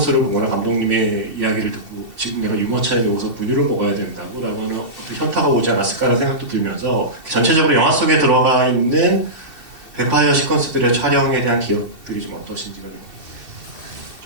보거나 감독님의 이야기를 듣고 지금 내가 유모차에 누워서 분유를 먹어야 된다고 라고 하는 현타가 오지 않았을까라는 생각도 들면서 전체적으로 영화 속에 들어가 있는 뱀파이어 시퀀스들의 촬영에 대한 기억들이 좀 어떠신지가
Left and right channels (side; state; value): left; late; 2.7 ms